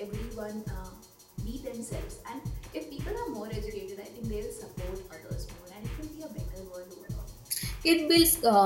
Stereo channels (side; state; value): both; identical; correlation 1.00